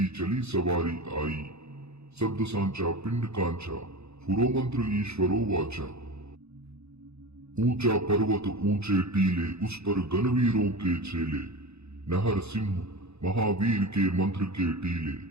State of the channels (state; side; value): late; left; 0.80 ms